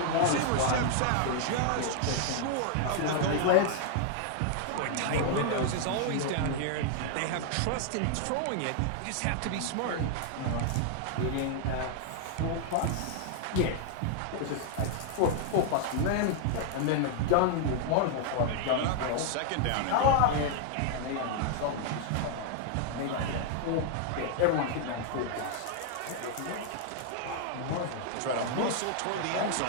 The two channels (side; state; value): both; different; correlation 0.00